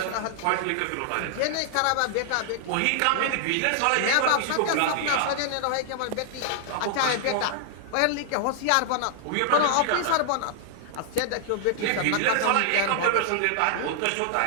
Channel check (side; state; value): both; different; correlation 0.00